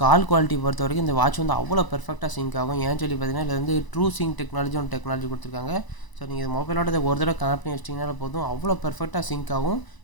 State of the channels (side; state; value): right; late; 1.0 ms